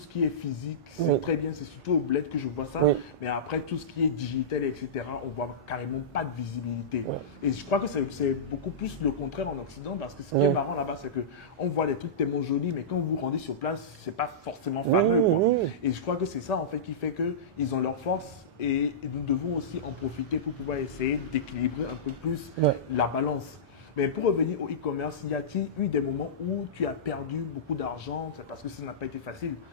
qui est physique. C'est Oui. très bien, c'est surtout au bled que je vois ça. Oui. Mais après, tout ce qui est digital, etc., on voit carrément pas de visibilité. Oui. Et je crois que c'est beaucoup plus le contraire en Occident parce que ce qui Oui. est marrant là-bas, c'est que on voit des trucs tellement jolis, mais quand vous vous rendez sur place, c'est pas forcément fameux, Oui, quoi. oui. Et je crois que c'est ça, en fait, qui fait qu'ils ont leur force et nous devons aussi en profiter pour pouvoir essayer d'équilibrer un peu plus Ouais. la balance. Mais pour revenir au e-commerce, y a-t-il eu des moments où tu as perdu beaucoup d'argent? C'est parce que ça n'a pas été facile.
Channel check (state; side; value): normal; both; correlation -0.18